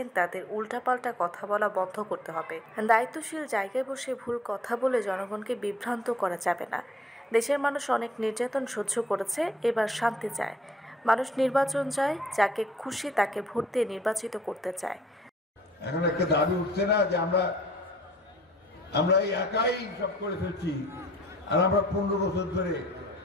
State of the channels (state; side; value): normal; both; correlation 0.60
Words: তাদের উল্টাপাল্টা কথা বলা বন্ধ করতে হবে। দায়িত্বশীল জায়গায় বসে ভুল কথা বলে জনগণকে বিভ্রান্ত করা যাবে না। দেশের মানুষ অনেক নির্যাতন সহ্য করেছে, এবার শান্তি চায়। মানুষ নির্বাচন চায়, যাকে খুশি তাকে ভোট দিয়ে নির্বাচিত করতে চায়। এখন একটা দাবি উঠছে না যে আমরা এই একাই সব করে ফেলছি, আর আমরা 15 বছর ধরে